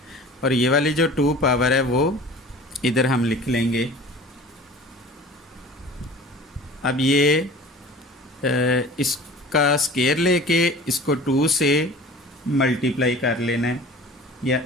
और ये वाली जो 2 पावर है वो इधर हम लिख लेंगे। अब ये इसका स्क्वायर लेके इसको 2 से मल्टीप्लाई कर लेना है या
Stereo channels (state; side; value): normal; both; correlation 0.42